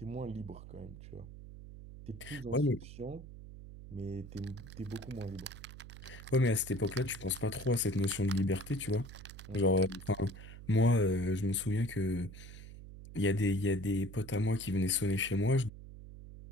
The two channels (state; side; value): noise; right; hum, 14 dB below the sound